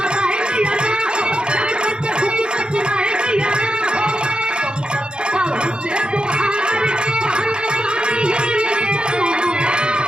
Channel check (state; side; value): late; left; 0.051 ms